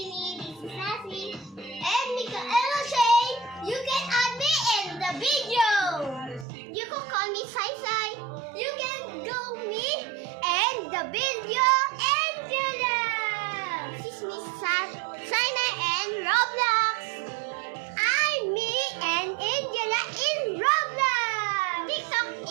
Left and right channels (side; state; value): left; drops out; at 6.5 s